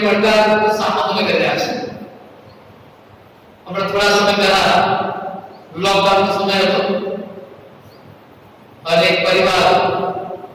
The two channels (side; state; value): both; identical; correlation 1.00